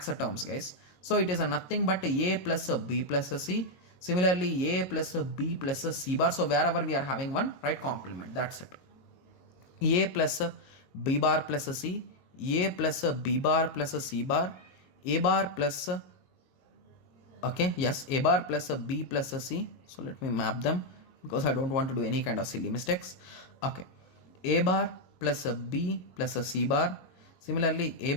terms, guys. So it is nothing but A plus B plus C. Similarly, A plus B plus C bar. So wherever we are having one, write complement. That's it. A plus B bar plus C. A plus B bar plus C bar. A bar plus, okay, yes, A bar plus B plus C. So let me map them because I don't want to do any kind of silly mistakes. Okay. A bar plus B plus C bar. Similarly, A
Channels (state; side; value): late; right; 22 ms